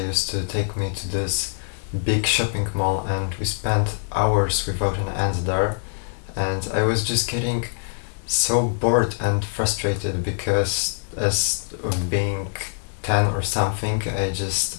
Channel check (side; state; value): right; silent; digital silence